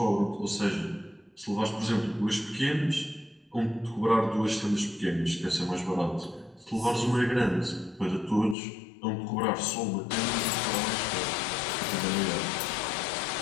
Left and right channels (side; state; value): right; drops out; at 8.6 s